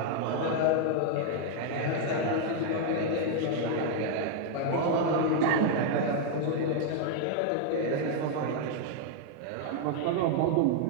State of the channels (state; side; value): different; both; correlation 0.00